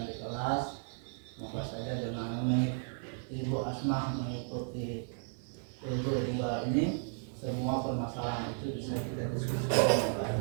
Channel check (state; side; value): silent; left; 55 dB below the other